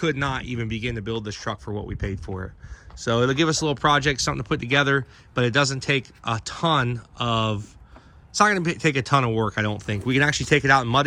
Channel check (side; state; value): both; identical; correlation 1.00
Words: not even begin to build this truck for what we paid for it. So it'll give us a little project, something to put together, but it doesn't take a ton of, it's not going to take a ton of work, I don't think. We can actually take it out and